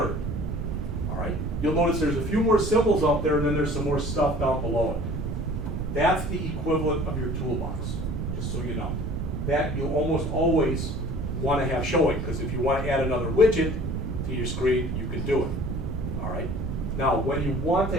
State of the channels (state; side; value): noise; right; rumble, 3 dB below the sound